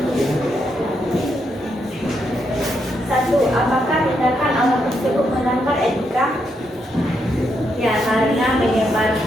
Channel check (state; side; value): normal; both; correlation 0.79